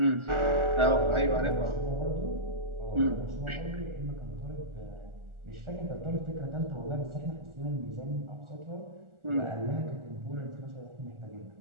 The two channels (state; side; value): late; left; 1.4 ms